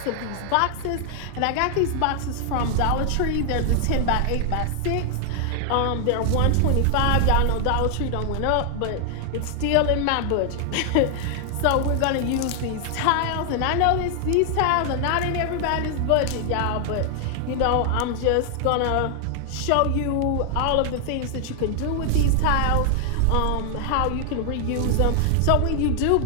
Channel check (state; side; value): different; both; correlation 0.00